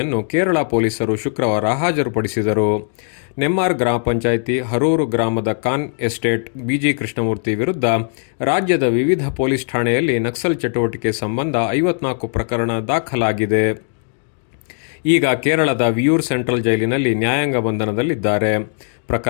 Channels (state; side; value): silent; right; digital silence